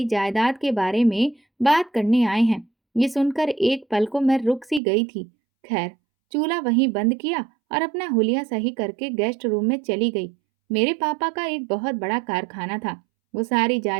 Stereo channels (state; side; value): drops out; left; at 4.8 s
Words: जायदाद के बारे में बात करने आए हैं। ये सुनकर एक पल को मैं रुक सी गई थी। खैर, चूल्हा वहीं बंद किया और अपना हुलिया सही करके गेस्ट रूम में चली गई। मेरे पापा का एक बहुत बड़ा कारखाना था। वो सारी